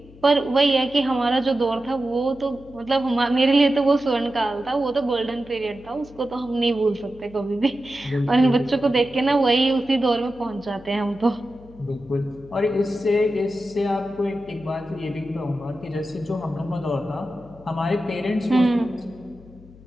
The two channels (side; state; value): left; noise; hum, 22 dB below the sound